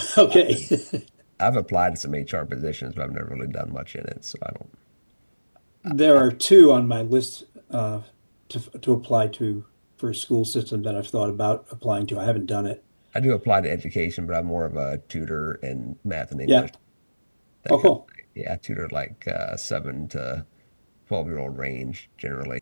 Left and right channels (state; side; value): inverted; both; correlation -1.00